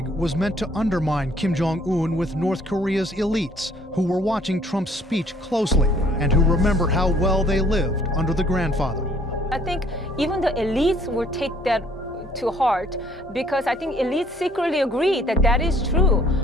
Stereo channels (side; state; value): both; normal; correlation 0.60